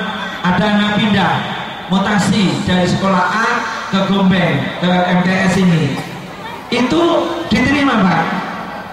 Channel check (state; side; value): noise; left; hum, 30 dB below the sound